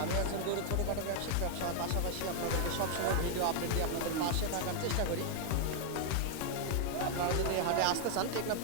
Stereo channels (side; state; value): both; different; correlation 0.00